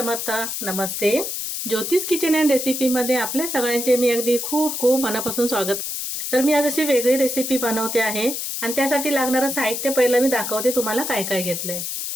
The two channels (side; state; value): left; noise; hiss, 4 dB below the sound